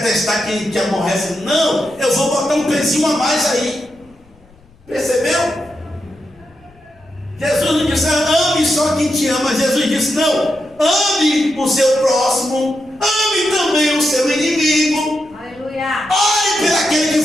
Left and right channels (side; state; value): left; noise; rumble, 29 dB below the sound